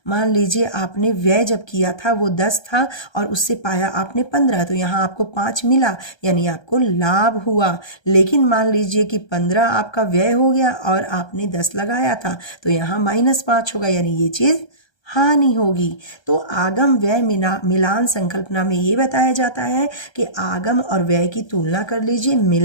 मान लीजिए आपने व्यय जब किया था वो 10 था और उससे पाया आपने 15, तो यहाँ आपको 5 मिला, यानी आपको लाभ हुआ। लेकिन मान लीजिए कि 15 आपका व्यय हो गया और आपने 10 लगाया था, तो यहाँ -5 होगा, यानी ये चीज़ हानि होगी। तो आगम व्यय मिलान संकल्पना में ये बताया जाता है कि आगम और व्यय की तुलना कर लीजिए,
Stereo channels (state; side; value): late; right; 1.3 ms